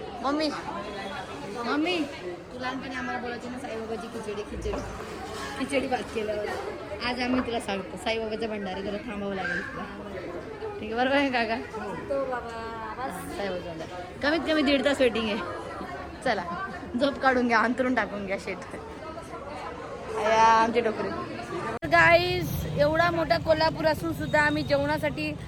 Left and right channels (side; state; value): both; identical; correlation 1.00